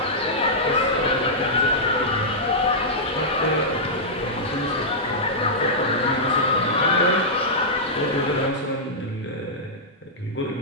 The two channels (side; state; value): both; normal; correlation -0.10